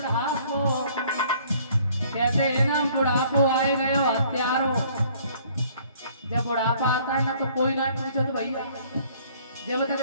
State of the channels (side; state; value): both; inverted; correlation -0.58